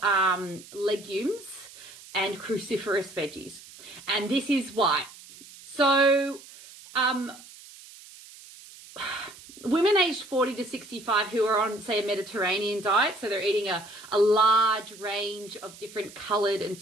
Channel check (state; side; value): noise; right; hiss, 19 dB below the sound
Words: legumes and cruciferous veggies. And this is why. So women aged 40 to 65 who are on, say, a Mediterranean diet, so they're eating a large range of different coloured and